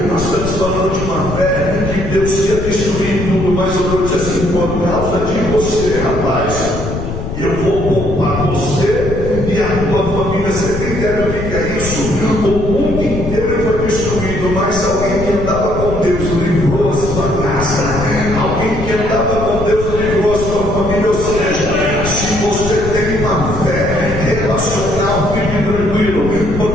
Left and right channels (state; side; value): noise; left; rumble, 6 dB below the sound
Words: Nós estamos falando de uma fé que Deus ia destruir tudo, mas eu vou dizer assim: por causa de você, rapaz, eu vou poupar você e a tua família. Você tem ideia do que é isso? O mundo inteiro foi destruído, mas alguém que andava com Deus livrou a sua casa. Alguém que andava com Deus livrou a sua família. Ou seja, se você tem uma fé relacional, fique tranquilo,